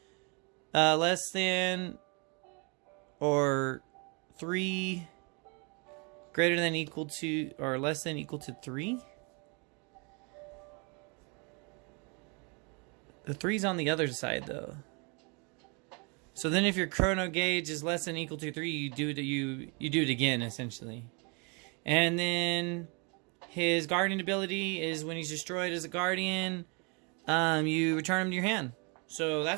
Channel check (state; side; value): quieter; left; 32.7 dB